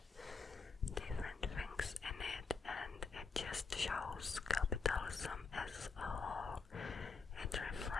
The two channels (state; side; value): quieter; right; 4.7 dB